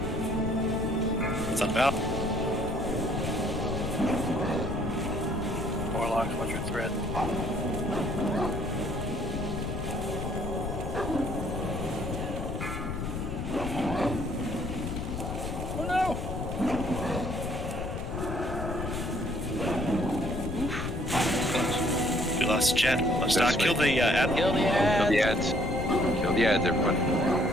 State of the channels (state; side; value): noise; left; rumble, 4 dB below the sound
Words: What's that about? Warlock, what's your threat? Oh no! We lost Jet. Let's not kill the ad. Kill the ads. Kill the ads, everybody.